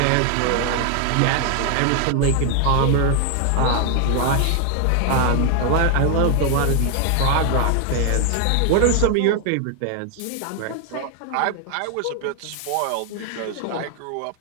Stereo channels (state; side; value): different; both; correlation 0.00